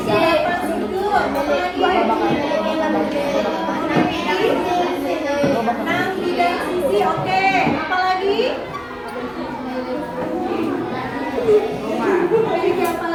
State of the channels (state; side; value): noise; left; hum, 27 dB below the sound